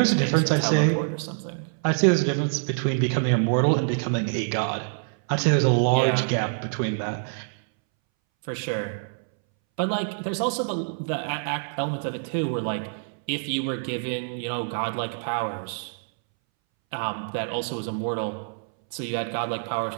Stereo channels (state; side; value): silent; left; 61 dB below the other